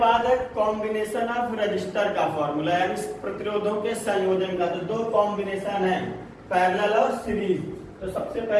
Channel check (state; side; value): identical; both; correlation 1.00